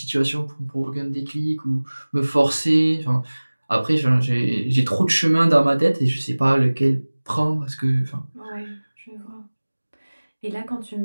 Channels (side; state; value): both; inverted; correlation -1.00